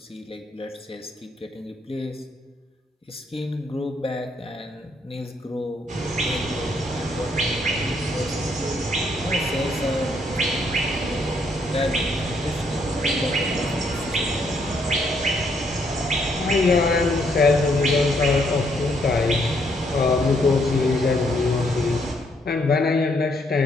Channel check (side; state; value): both; normal; correlation 0.72